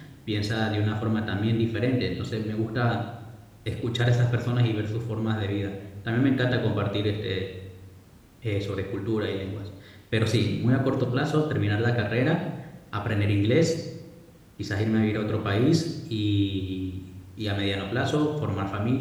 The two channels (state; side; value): identical; both; correlation 1.00